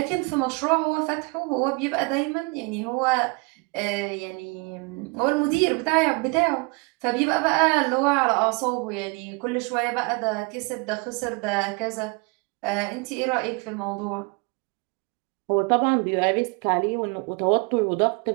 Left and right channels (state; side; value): quieter; left; 29.8 dB